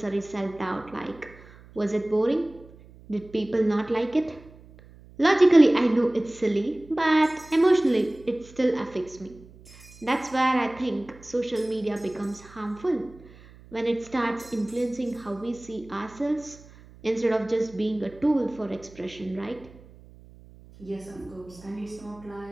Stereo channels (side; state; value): right; noise; hum, 22 dB below the sound